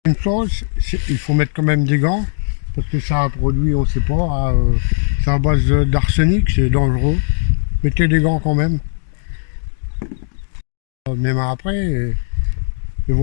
Une chose, il faut mettre quand même des gants. Parce que ça a produit, on ne sait pas, c'est à base d'arsenic, c'est dangereux. Mettez des gants quand même. Même après, il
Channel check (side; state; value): right; silent; digital silence